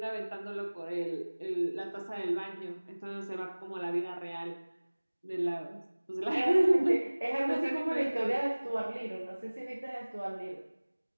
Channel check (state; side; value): inverted; both; correlation -1.00